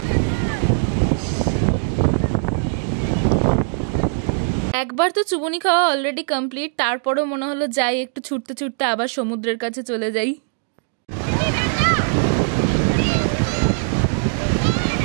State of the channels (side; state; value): left; silent; 65 dB below the other